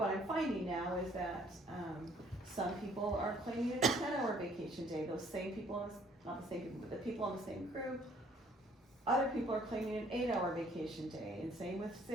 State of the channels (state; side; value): normal; both; correlation 0.60